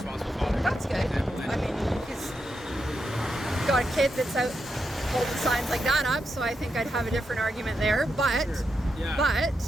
father. That's good. I mean, he's got a kid that's out holding signs like that up, so I think I'd have a different argument there. But,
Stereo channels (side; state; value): both; normal; correlation 0.85